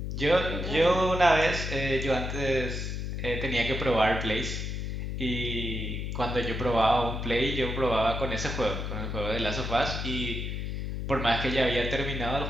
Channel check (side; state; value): left; noise; hum, 4 dB below the sound